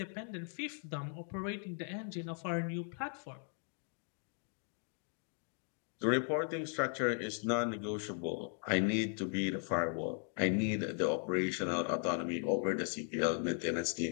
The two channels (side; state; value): right; silent; 53 dB below the other